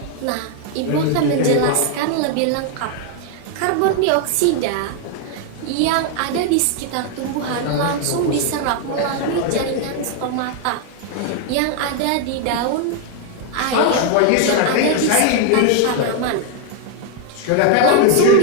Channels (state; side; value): different; both; correlation 0.00